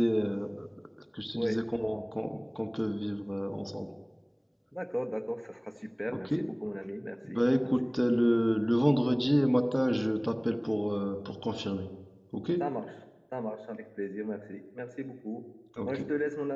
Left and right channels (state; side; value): identical; both; correlation 1.00